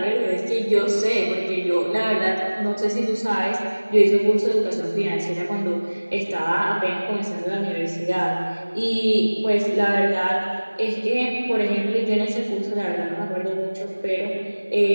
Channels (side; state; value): both; inverted; correlation -1.00